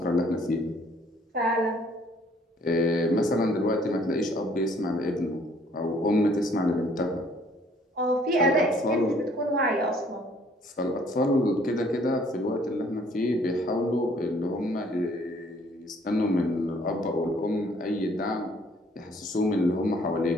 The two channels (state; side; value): normal; both; correlation 0.61